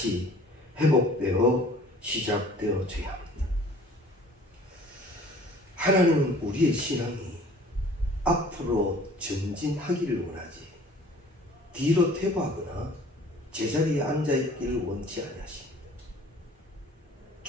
회복되어 시작되어져야 합니다. 하나님은 우리의 신앙이 앞으로 전진하기를 원하지 뒤로 퇴보하거나 제자리에 앉아있기를 원치 아니하십니다.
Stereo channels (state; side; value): normal; both; correlation 0.50